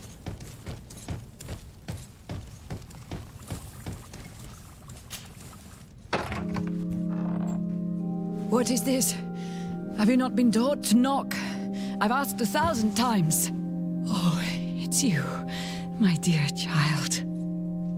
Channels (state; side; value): identical; both; correlation 1.00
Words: What is this? Have you not been taught to knock? I've asked 1,000 times. Oh, it's you, my dear child.